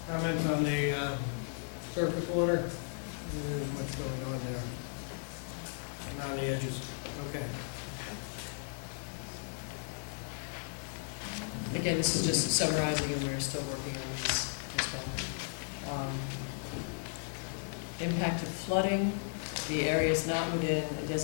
comments on the surface water? There's much going on there. And on the edges, okay. Again, this is just summarizing, and we're still working on these as well. Impact of flooding, the area is not within a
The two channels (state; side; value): silent; right; digital silence